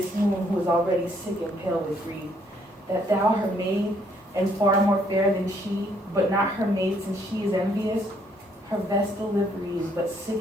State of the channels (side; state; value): both; normal; correlation 0.68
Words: moon who is already sick and pale with grief. That thou, her maid, and far more fair than she, but not her maid since she is envious, her vestal livery is but